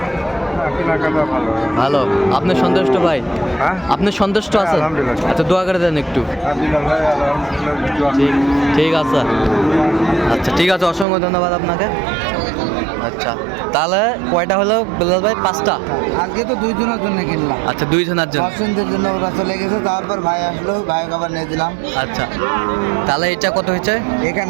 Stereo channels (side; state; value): left; drops out; at 11.1 s